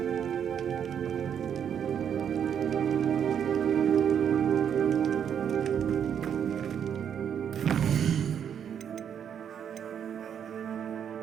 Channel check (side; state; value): left; quieter; 8.5 dB